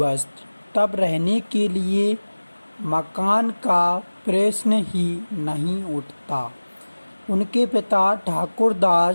तब रहने के लिए मकान का प्रश्न ही नहीं उठता। उनके पिता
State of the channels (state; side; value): inverted; both; correlation -1.00